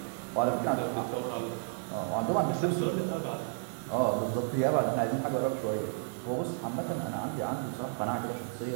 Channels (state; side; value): silent; left; 56 dB below the other